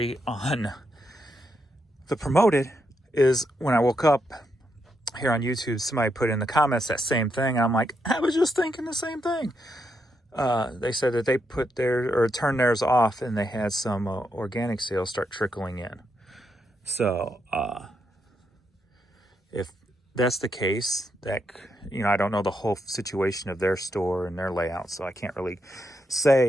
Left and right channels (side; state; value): both; normal; correlation 0.81